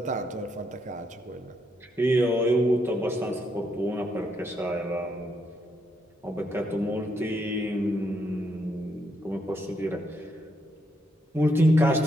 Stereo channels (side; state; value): both; normal; correlation 0.77